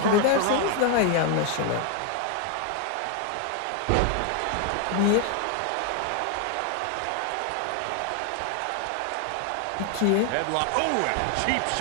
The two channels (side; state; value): both; different; correlation 0.01